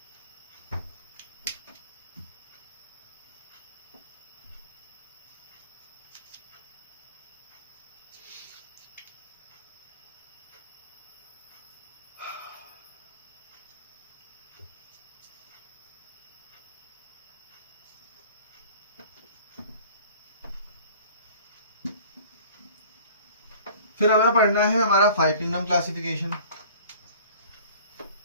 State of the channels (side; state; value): both; inverted; correlation -0.46